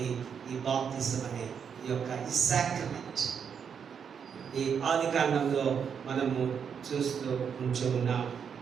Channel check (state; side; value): quieter; left; 7.1 dB